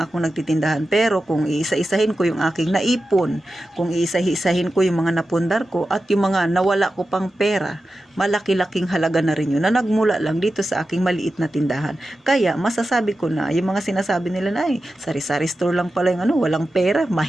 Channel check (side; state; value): both; normal; correlation 0.92